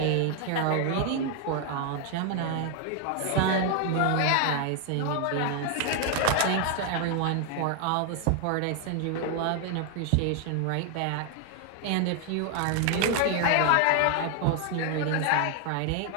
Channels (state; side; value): different; both; correlation 0.00